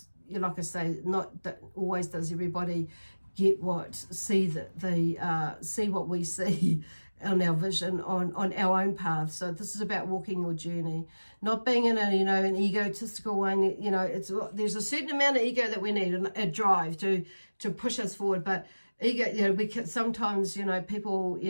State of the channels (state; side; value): inverted; both; correlation -1.00